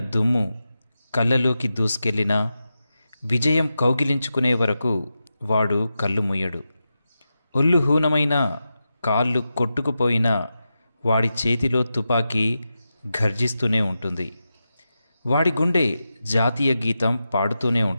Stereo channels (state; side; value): inverted; both; correlation -0.90